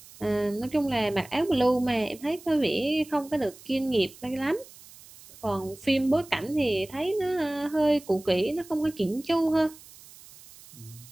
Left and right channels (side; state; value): right; noise; hiss, 21 dB below the sound